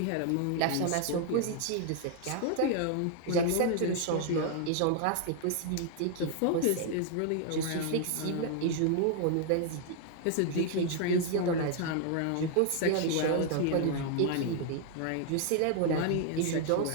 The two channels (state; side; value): different; both; correlation 0.00